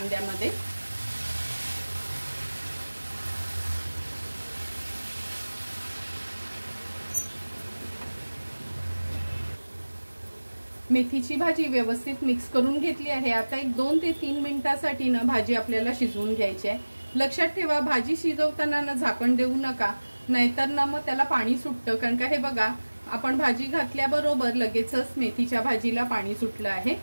मेथीची भाजी व्यवस्थित मिक्स करून घेतली आहे। आता एक 2 ते 3 मिनिटांसाठी ना भाजी आपल्याला शिजवून घ्यायची आहे। लक्षात ठेवा, भाजी शिजवताना ना झाकण देऊ नका, नाहीतर ना मग त्याला पाणी सुटतं। कारण का हे बघा, आपण भाजी घातल्याबरोबर लगेचच मेथीच्या भाजीला पाणी सुटलं आहे।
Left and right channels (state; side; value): inverted; both; correlation -1.00